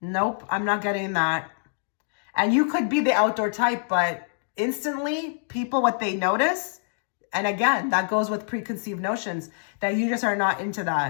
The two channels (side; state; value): right; silent; digital silence